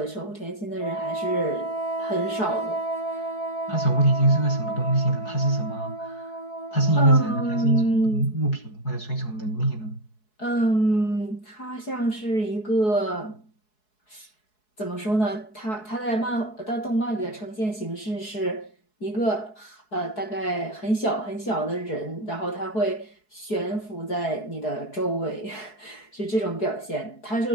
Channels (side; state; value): right; late; 4.7 ms